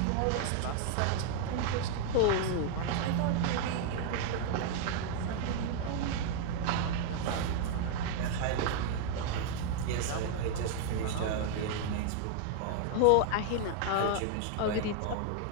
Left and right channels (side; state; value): both; different; correlation 0.00